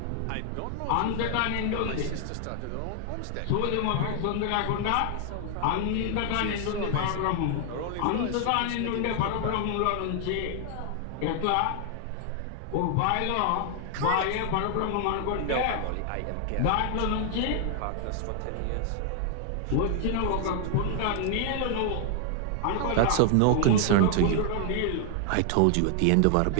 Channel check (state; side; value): different; both; correlation 0.00